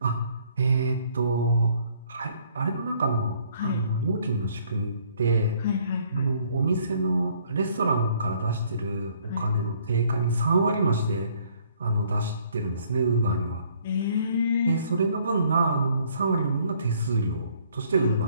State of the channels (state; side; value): inverted; both; correlation -0.62